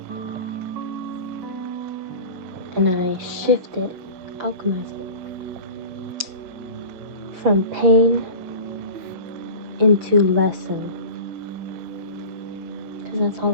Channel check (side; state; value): left; late; 5.8 ms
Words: And I shift it, alchemize it. From pain into lesson. Because that's